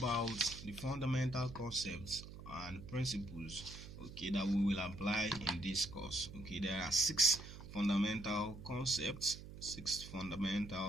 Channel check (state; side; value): noise; right; hum, 13 dB below the sound